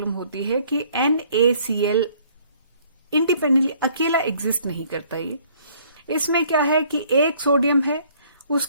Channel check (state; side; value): inverted; both; correlation -0.60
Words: होती है कि NaCl इंडिपेंडेंटली अकेला एग्जिस्ट नहीं करता। ये इसमें क्या है कि एक सोडियम है,